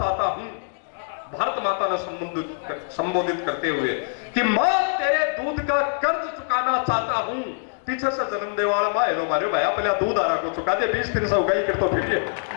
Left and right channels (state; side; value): silent; right; digital silence